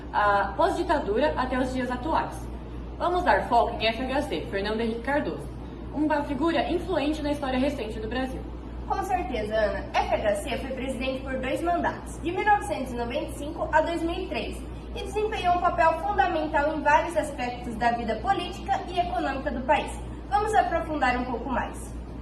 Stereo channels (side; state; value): both; identical; correlation 1.00